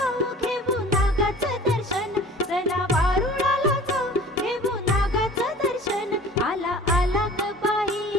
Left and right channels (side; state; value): both; normal; correlation 0.45